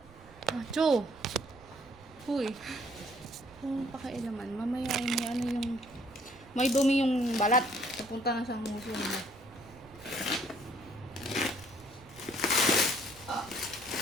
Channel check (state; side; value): noise; right; rumble, 22 dB below the sound